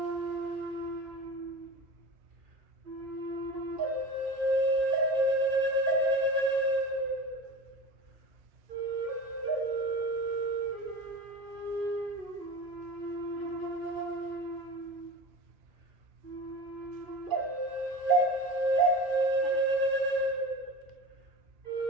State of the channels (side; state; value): left; late; 2.4 ms